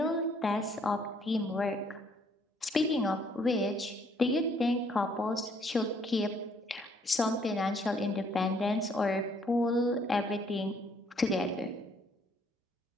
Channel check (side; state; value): both; normal; correlation 0.65